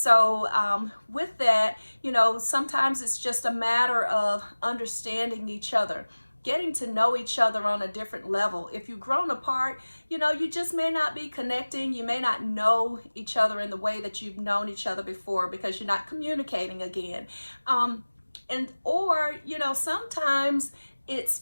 with that, sometimes it's just a matter of understanding each other, getting to know each other on a different level. If you've grown apart, you just may not be connecting. You may not know each other in the way that you've known each other before because you're not communicating again. Or sometimes it's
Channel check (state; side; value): inverted; both; correlation -1.00